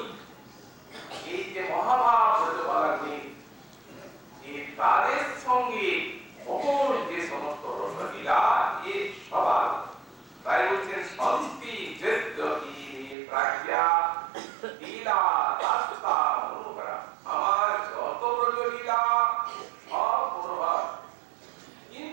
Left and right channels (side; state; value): left; drops out; at 13.2 s